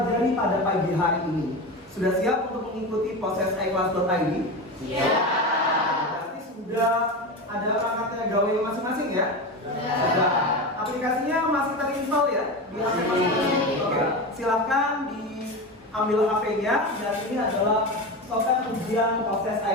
pada pagi hari ini. Sudah siap untuk mengikuti proses iClass.id? Siap. Berarti sudah ada perangkatnya gawe masing-masing ya? Sudah. Aplikasinya masih terinstall ya di HP masing-masing? Oke. Silakan diambil HP-nya dan ini adalah software ujian proses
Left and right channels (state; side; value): normal; both; correlation 0.23